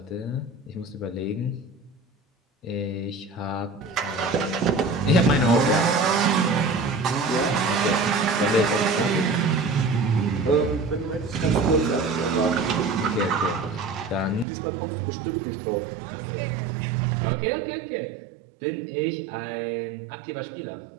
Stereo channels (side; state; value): left; drops out; at 14.5 s